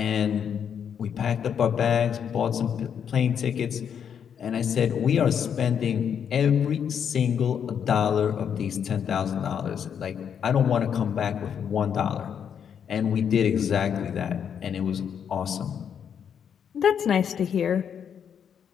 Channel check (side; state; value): right; quieter; 8.0 dB